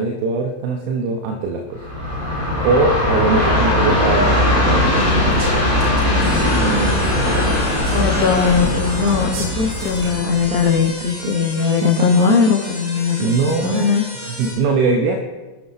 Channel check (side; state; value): left; late; 31 ms